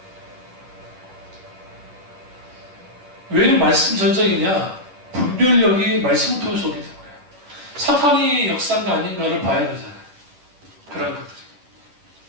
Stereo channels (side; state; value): left; late; 11 ms